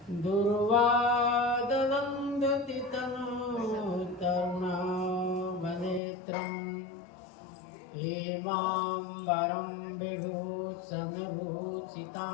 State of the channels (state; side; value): drops out; right; at 6.0 s